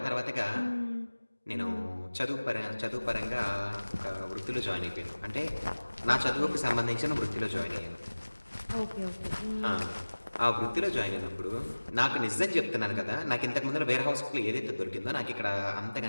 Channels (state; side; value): inverted; both; correlation -1.00